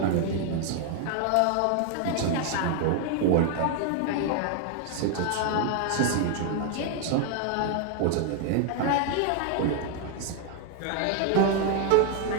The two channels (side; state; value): both; different; correlation 0.00